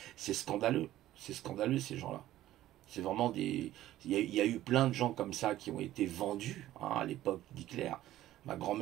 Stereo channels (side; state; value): left; quieter; 14.2 dB